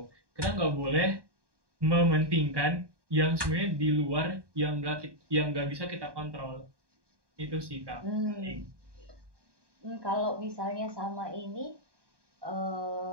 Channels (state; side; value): late; left; 1.2 ms